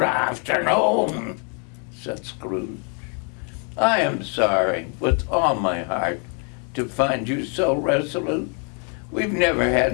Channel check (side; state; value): right; quieter; 39.9 dB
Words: afternoon, said Scrooge. I am sorry, with all my heart, to find you so resolute. We've never had